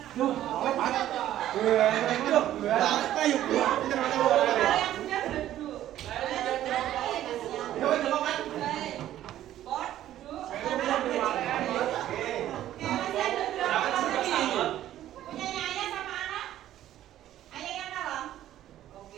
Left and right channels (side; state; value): left; quieter; 12.7 dB